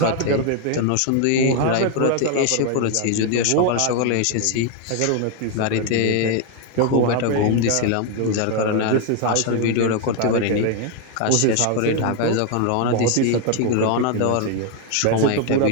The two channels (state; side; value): different; both; correlation 0.01